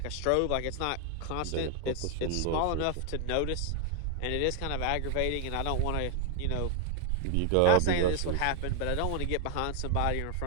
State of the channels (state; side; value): different; both; correlation 0.00